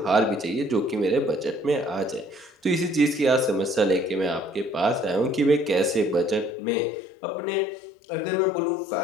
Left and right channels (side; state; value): right; drops out; at 6.5 s